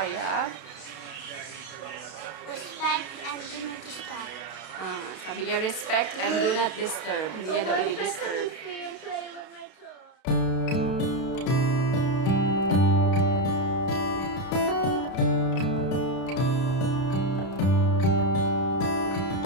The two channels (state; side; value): late; right; 31 ms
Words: Respect and do not disturb. Sabi niya, respect and do not disturb. Hindi niya daw i-disturb. Free and play with my toys.